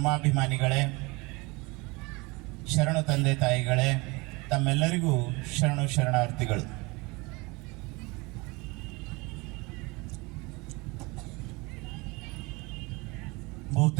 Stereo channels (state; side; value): quieter; left; 25.6 dB